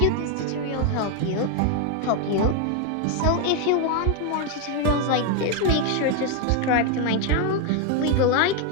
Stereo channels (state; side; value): different; both; correlation 0.01